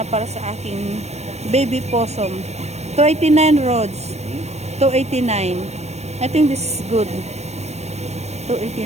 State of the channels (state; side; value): late; left; 0.32 ms